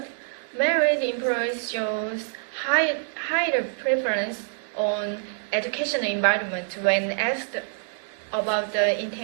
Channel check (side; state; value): left; silent; digital silence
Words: married employees shows higher preference on educational environment when asked about the